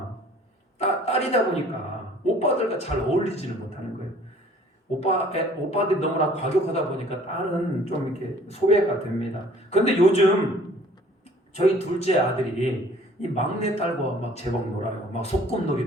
딸이다 보니까 오빠들과 잘 어울리지는 못하는 거예요. 오빠들이 너무나 과격하다 보니까 딸은 좀 이렇게 소외가 됩니다. 그런데 요즘 저희 둘째 아들이 이 막내 딸과 막 제법 놀아요. 막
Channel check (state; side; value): normal; both; correlation 0.53